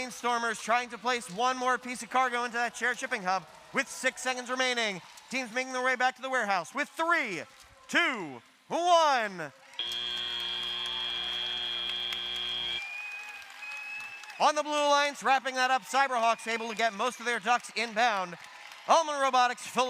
trying to place one more piece of cargo into that shared shipping hub with 6 seconds remaining. Teams making their way back to the warehouse with 3, 2, 1. On the Blue Alliance, wrapping that up, Cyberhawks able to get most of their ducks inbound. Almond Robotics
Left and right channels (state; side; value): identical; both; correlation 1.00